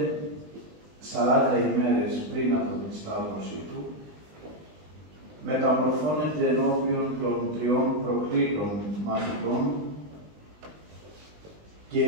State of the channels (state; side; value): late; left; 20 ms